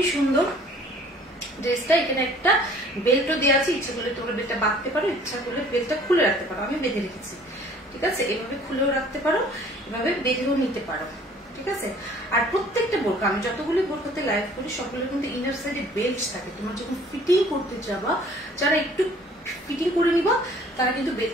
সুন্দর ড্রেসটা। এখানে একটা বেল্টও দেওয়া আছে, ইচ্ছা করলে তোমরা বেল্টটা বাঁধতে পারো, ইচ্ছা করলে বেল্টটা খুলে রাখতে পারো। আমি বেঁধে রেখেছি। ঠিক আছে, এভাবে খুলেও রাখতে পারো, এভাবে বেঁধেও নিতে পারো। ঠিক আছে, আর প্রত্যেকটা বোরকা, আমি যতগুলি বোরকাতে লাইভ করি সবগুলো কিন্তু ইনার সাইডে বেল্ট থাকে। তোমরা যখন ফিটিং করতে যাবা, যারা একটু ফিটিং করে নিবা তারা কিন্তু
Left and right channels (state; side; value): normal; both; correlation 0.53